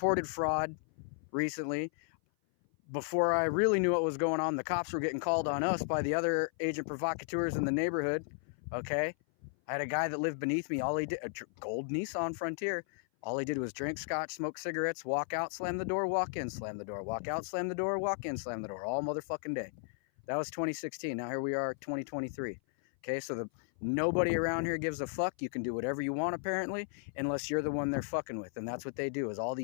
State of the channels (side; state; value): right; silent; 55 dB below the other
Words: fraud recently. Before I really knew what was going on, the cops were getting called on us by the other agent provocateurs in the neighborhood. Okay? I had a guy that lived beneath me. All he did, a gold Nissan Frontier. All he did was drink scotch, smoke cigarettes, walk out, slam the door, walk in, slam the door, walk out, slam the door, walk in, slam the door, all motherfucking day. That was 2016. Now here we are, 2023. Okay, so nobody around here gives a fuck. You can do whatever you want, apparently, unless you're the one they're fucking with. And that's what they do, is all